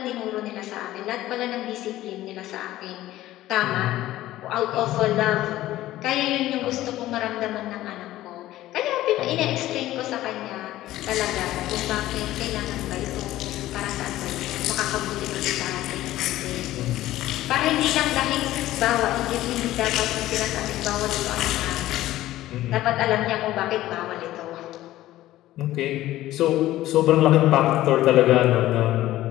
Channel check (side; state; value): right; quieter; 15.1 dB